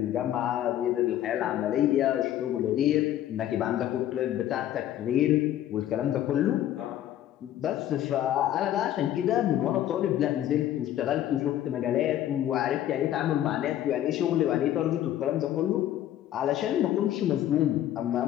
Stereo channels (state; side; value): quieter; right; 12.2 dB